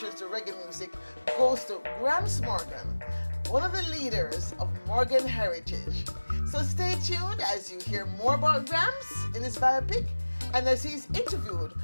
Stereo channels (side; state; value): both; inverted; correlation -1.00